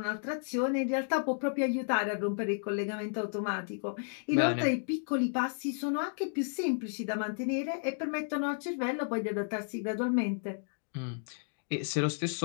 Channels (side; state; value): right; silent; digital silence